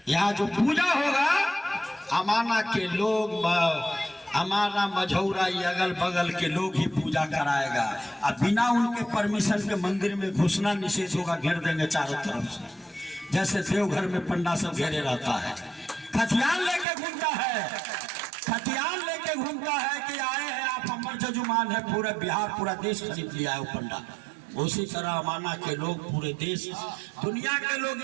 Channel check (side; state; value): left; drops out; at 16.9 s